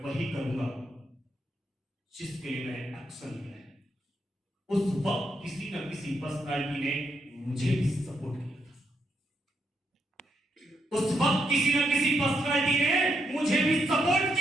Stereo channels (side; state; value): both; normal; correlation 0.79